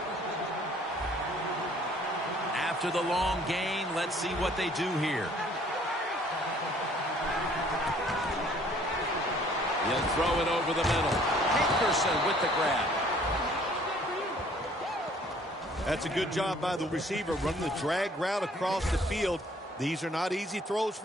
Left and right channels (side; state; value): both; normal; correlation 0.58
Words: After the long gain, let's see what they do here. He'll throw it over the middle. Hankerson with the grab. That's a good job by the receiver, running the drag route across the field. These are not easy throws